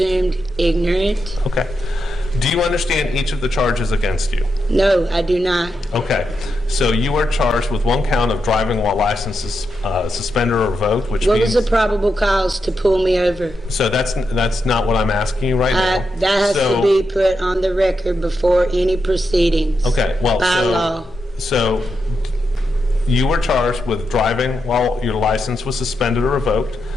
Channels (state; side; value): normal; both; correlation 0.86